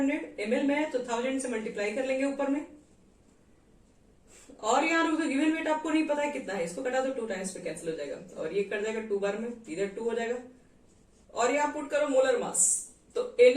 ml में है, तो 1000 से मल्टीप्लाई कर लेंगे ऊपर में। और यहाँ रुको, गिवन वेट आपको नहीं पता है कितना है, इसको कटा दो 2 टाइम्स पे कैंसिल हो जाएगा, और ये कट जाएगा 2 बार में, इधर 2 हो जाएगा। और यहाँ पुट करो मोलर मास, तो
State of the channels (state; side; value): identical; both; correlation 1.00